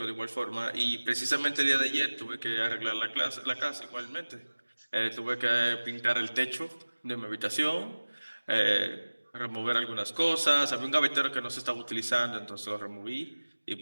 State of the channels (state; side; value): inverted; both; correlation -1.00